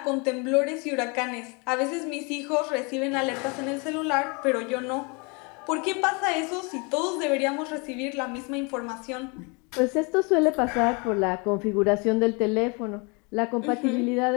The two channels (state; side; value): quieter; right; 31.0 dB